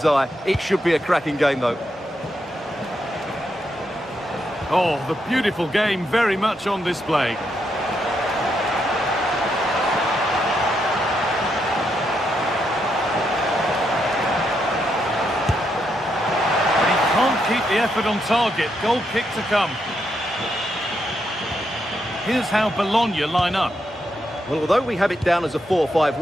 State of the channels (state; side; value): normal; both; correlation 0.80